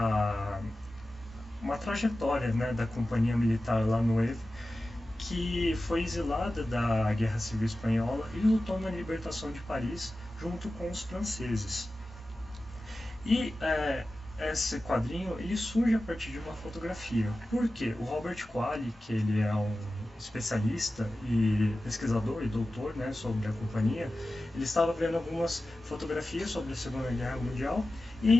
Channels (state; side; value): normal; both; correlation 0.94